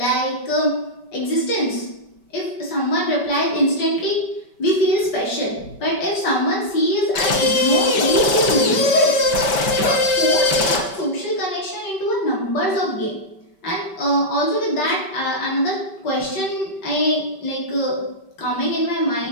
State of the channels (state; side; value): late; right; 5.2 ms